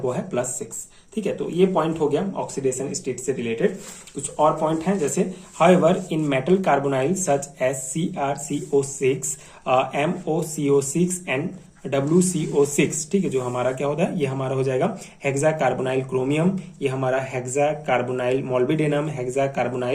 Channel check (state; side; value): identical; both; correlation 1.00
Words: है +6। ठीक है, तो ये पॉइंट हो गया ऑक्सीडेशन स्टेट से रिलेटेड। कुछ और पॉइंट हैं, जैसे however in metal carbonyl such as CrCO6, MoCO6 and WCO6, ठीक है, जो हमारा क्या होता है, ये हमारा हो जाएगा हेक्सा कार्बोनाइल क्रोमियम, ये हमारा hexa carbonyl molybdenum, hexa